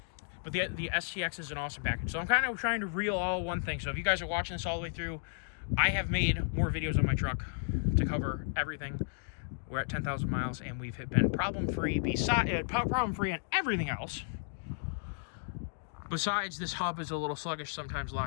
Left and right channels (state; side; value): silent; right; digital silence